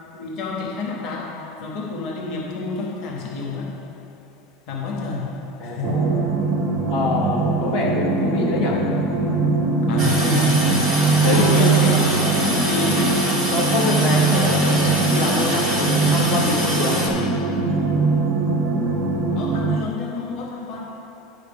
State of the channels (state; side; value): normal; both; correlation 0.32